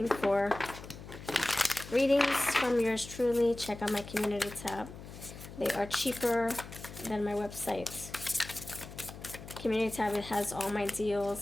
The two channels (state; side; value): noise; left; hum, 14 dB below the sound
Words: for readings from yours truly, check out my community tab. They are cheaper than my website. Community tab, it has all my